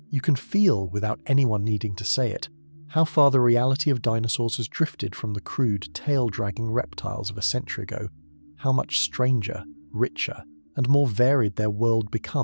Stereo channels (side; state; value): both; inverted; correlation -1.00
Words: You can feel, without anyone needing to say it, how far the reality of dinosaurs has drifted from the crude, tail-dragging reptiles of a century ago, how much stranger, richer, and more varied their world